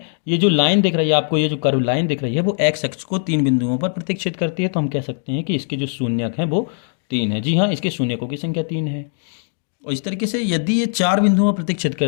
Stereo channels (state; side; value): silent; right; digital silence